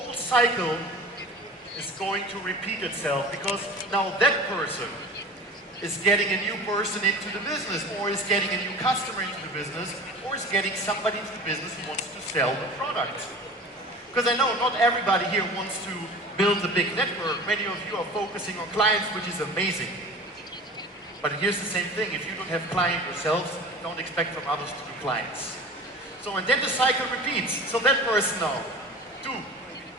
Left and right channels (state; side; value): normal; both; correlation 0.38